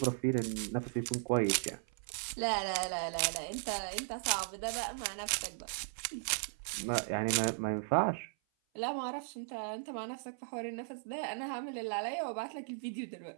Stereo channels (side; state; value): left; silent; 53 dB below the other